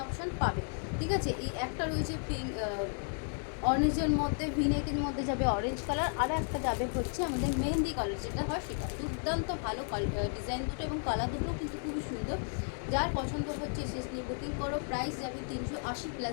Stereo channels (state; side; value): silent; right; 55 dB below the other